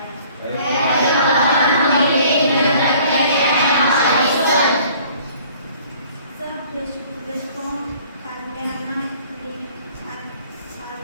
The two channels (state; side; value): inverted; both; correlation -0.53